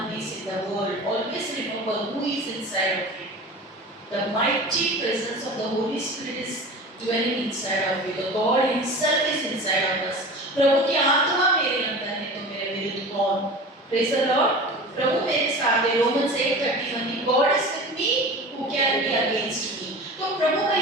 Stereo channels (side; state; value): both; normal; correlation 0.35